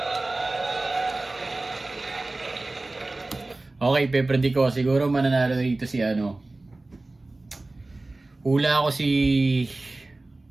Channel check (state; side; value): quieter; left; 3.0 dB